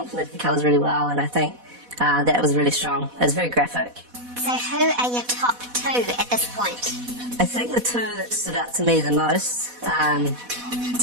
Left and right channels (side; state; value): left; late; 4.1 ms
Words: the colours really well, and I think that was really strong. It was very graphic. So who are your top two at this point? I think the two that stood out to me the most,